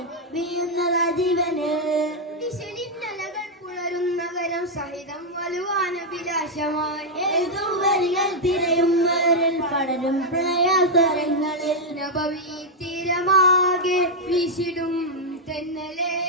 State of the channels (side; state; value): both; normal; correlation -0.02